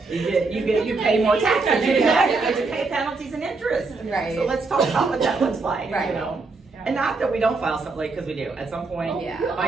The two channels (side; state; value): left; quieter; 3.9 dB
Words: pay more taxes. You get to pay penalties and interest. Right. So let's talk about what that looks like. Right. And not that we don't file something late, because we do. At some point, Yeah.